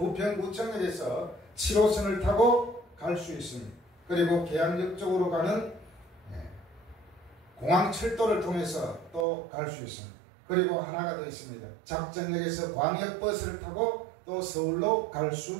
7호선을 타고 갈 수 있습니다. 그리고 계양역 쪽으로 가는 공항철도를 통해서 또 갈 수 있습니다. 그리고 하나가 더 있습니다. 작전역에서 광역버스를 타고 또 서울로 갈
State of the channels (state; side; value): drops out; left; at 9.2 s